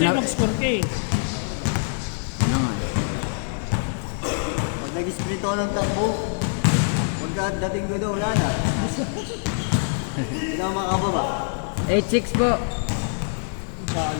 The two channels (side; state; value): right; silent; digital silence